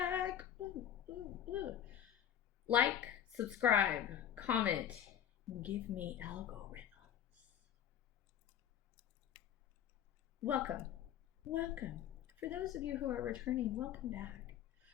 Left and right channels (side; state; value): right; quieter; 10.1 dB